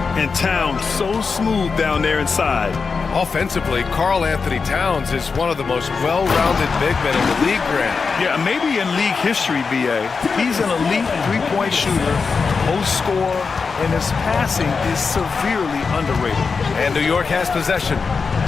And Towns so smooth down there inside. Offensively, Karl Anthony Towns is one of the most well-rounded big men in the league, Grant. Yeah, maybe in league history, B.A. He's an elite three-point shooter, post scorer, and his passing is severely underrated. And New York has possession.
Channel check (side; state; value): right; quieter; 5.0 dB